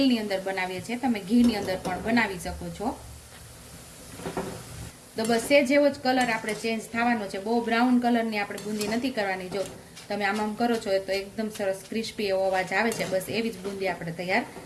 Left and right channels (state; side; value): identical; both; correlation 1.00